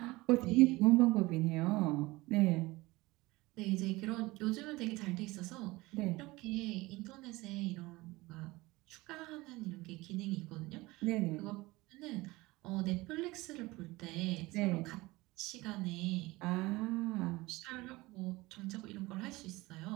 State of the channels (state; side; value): quieter; left; 21.0 dB